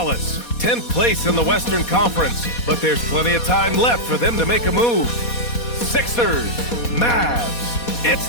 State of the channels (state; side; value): late; right; 4.2 ms